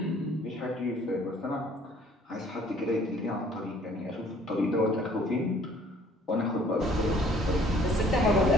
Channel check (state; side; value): normal; both; correlation 0.57